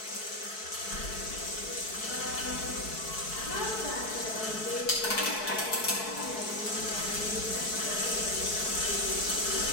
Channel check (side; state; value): right; late; 4.6 ms